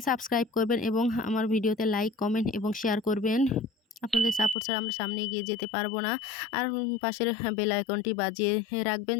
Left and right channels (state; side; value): drops out; right; at 4.5 s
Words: সাবস্ক্রাইব করবেন এবং আমার ভিডিওতে লাইক, কমেন্ট এবং শেয়ার করবেন। আপনাদের সাপোর্ট ছাড়া আমরা সামনে এগিয়ে যেতে পারবো না। আর পাশের বেল আইকনটি বাজিয়ে রাখবেন